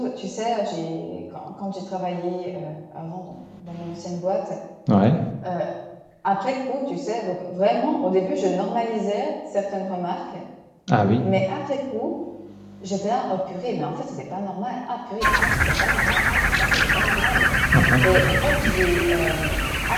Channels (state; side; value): identical; both; correlation 1.00